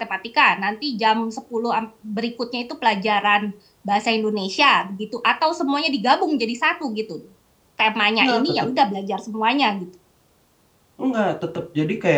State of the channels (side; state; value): both; identical; correlation 1.00